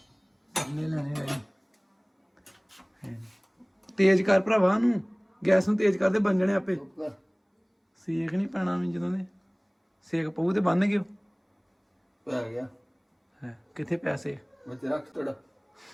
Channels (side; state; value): both; identical; correlation 1.00